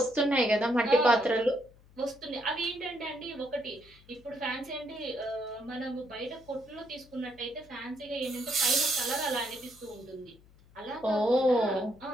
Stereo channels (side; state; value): left; noise; hum, 26 dB below the sound